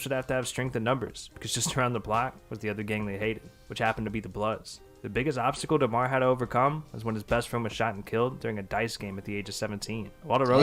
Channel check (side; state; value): both; identical; correlation 1.00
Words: would have to have strength in numbers, because just around the block was the other gang they hated, which happened to be the Bloods. The biggest obstacle DeMar had to overcome was when his best friend was shot and killed during a dice game at the age of 17. While